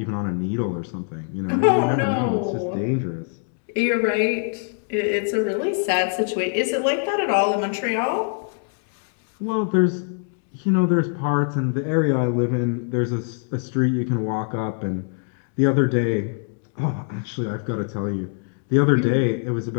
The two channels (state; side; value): silent; right; 56 dB below the other